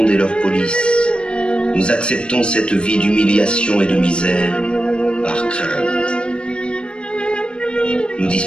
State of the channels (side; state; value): right; late; 0.055 ms